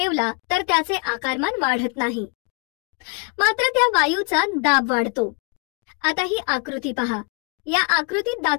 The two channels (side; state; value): right; quieter; 34.2 dB